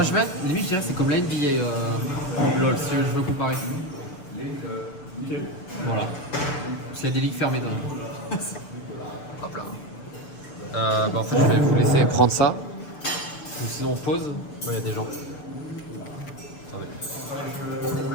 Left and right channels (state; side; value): late; right; 6.8 ms